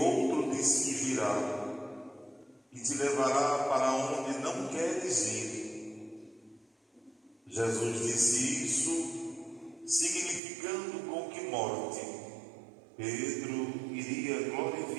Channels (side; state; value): left; drops out; at 10.4 s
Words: te cingirá e te levará para onde não queres ir. Jesus disse isso, significando com que morte Pedro iria